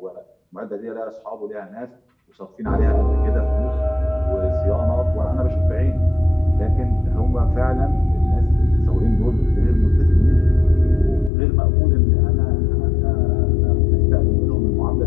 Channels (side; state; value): right; drops out; at 11.3 s